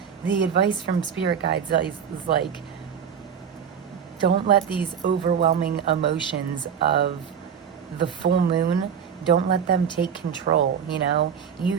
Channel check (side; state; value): left; quieter; 7.6 dB